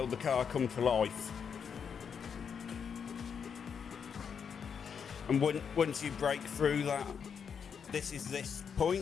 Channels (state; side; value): quieter; right; 6.9 dB